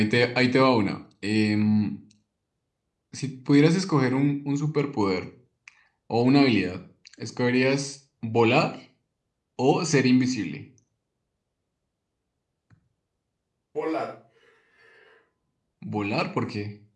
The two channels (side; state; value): both; identical; correlation 1.00